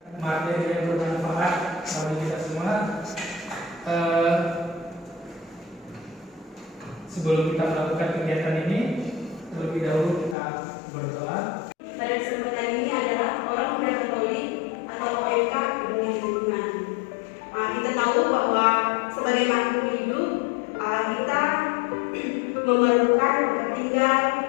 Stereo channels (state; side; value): drops out; right; at 10.4 s